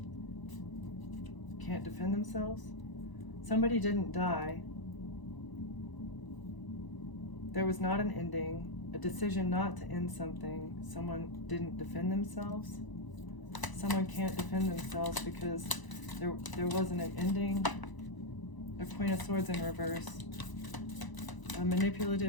Can't defend themselves. Somebody didn't die. There was not an ending, a decision not to end something. Someone didn't defend themselves. Someone can't defend themselves because there wasn't an ending. A Queen of Swords in reverse. A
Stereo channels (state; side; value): late; right; 1.0 ms